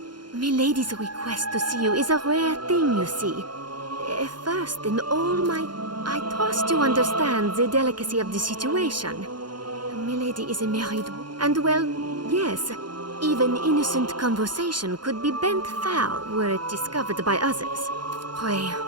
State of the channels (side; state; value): left; late; 0.71 ms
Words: Milady's request to see you is a rare thing, you see. First, in all my... I trust you understand the delicacy of the situation. Milady is a married... And well, yes, even innocent conversation could be bent foul were it discovered by others. Pray,